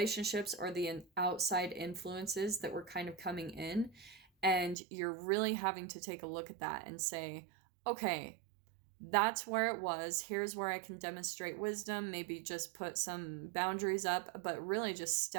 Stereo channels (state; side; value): drops out; left; at 4.8 s